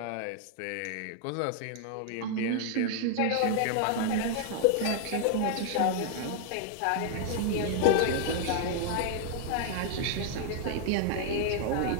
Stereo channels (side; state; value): both; different; correlation -0.01